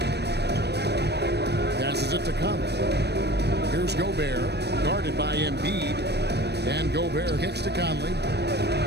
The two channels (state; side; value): late; left; 0.48 ms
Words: Passes it to Conley. Here's Gobert. Guarded by Embiid. And Gobert kicks to Conley.